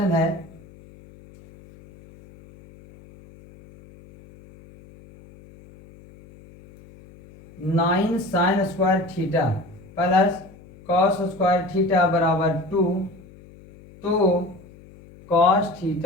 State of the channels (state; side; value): noise; left; hum, 23 dB below the sound